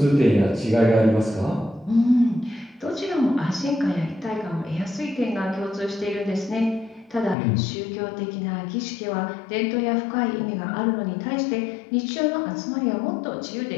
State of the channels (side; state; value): right; drops out; at 7.4 s